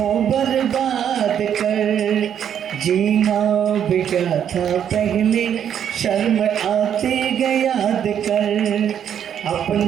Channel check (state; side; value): quieter; left; 9.1 dB